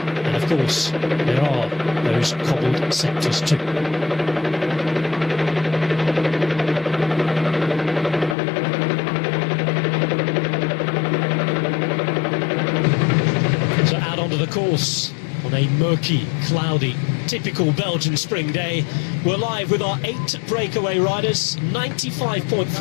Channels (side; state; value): right; drops out; at 8.3 s